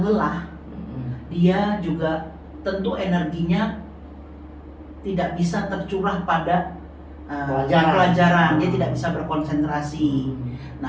lelah, dia juga tentu energinya tidak bisa tercurah pada pelajaran, dia tidak bisa berkonsentrasi.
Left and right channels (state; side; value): identical; both; correlation 1.00